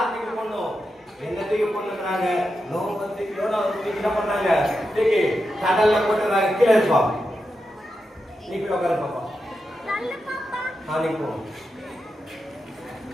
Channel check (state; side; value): normal; both; correlation 0.88